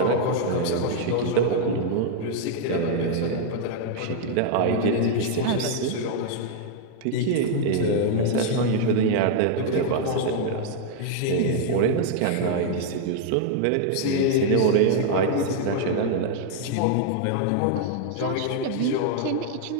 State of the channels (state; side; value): different; both; correlation 0.00